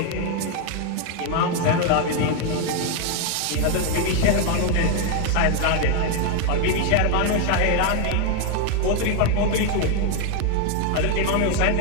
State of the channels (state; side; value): different; both; correlation 0.01